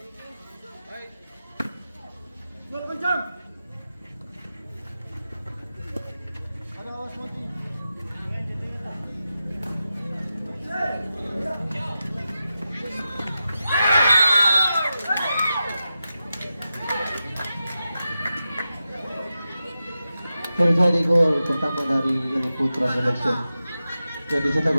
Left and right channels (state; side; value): inverted; both; correlation -0.91